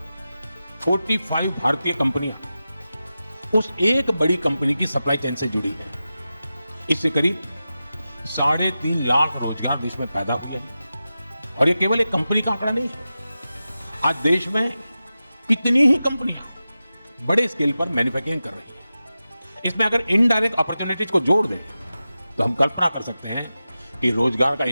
45 भारतीय कंपनियां उस एक बड़ी कंपनी की सप्लाई चेन से जुड़ी है। इससे करीब 3.5 लाख रोजगार देश में पैदा हुए हैं। और ये केवल एक कंपनी का आंकड़ा नहीं है। आज देश में कितनी ही कंपनियां बड़े स्केल पर मैन्युफैक्चरिंग कर रही हैं। इसमें अगर इनडायरेक्ट अपॉर्चुनिटीज को जोड़ दें तो हम कल्पना कर सकते हैं कि रोजगार का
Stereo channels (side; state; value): both; inverted; correlation -0.93